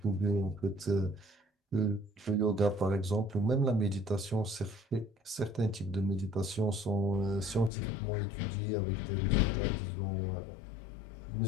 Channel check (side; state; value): right; drops out; at 7.7 s